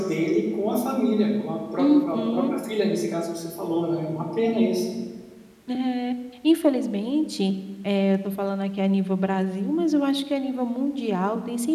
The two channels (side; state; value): both; identical; correlation 1.00